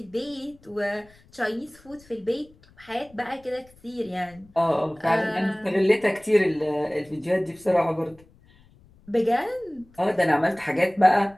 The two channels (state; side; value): noise; left; rumble, 28 dB below the sound